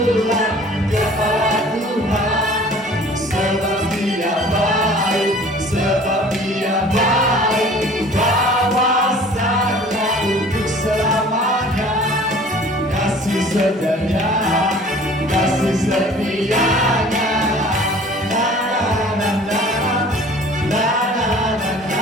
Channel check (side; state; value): both; normal; correlation 0.48